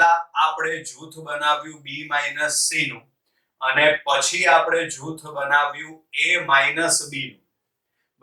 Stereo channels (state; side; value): identical; both; correlation 1.00